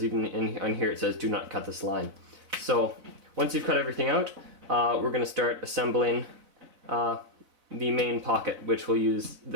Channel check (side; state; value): left; late; 4.0 ms